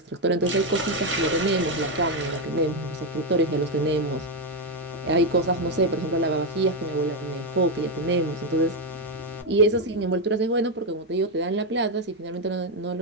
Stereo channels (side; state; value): both; normal; correlation 0.05